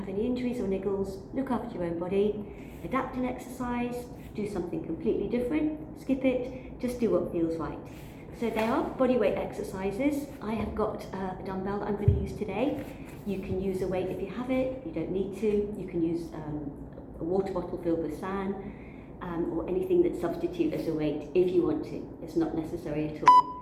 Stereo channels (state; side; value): identical; both; correlation 1.00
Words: any injuries or niggles, look after your own body, adapt an exercise, do something completely different, skip it, just do what feels right. So they are bodyweight exercises. I have got a dumbbell that I'm going to use today. You can use a weight if you have it, you don't need to. You can use a water bottle filled with sand, or anything that substitute as a weight if you want to. It's not necessary at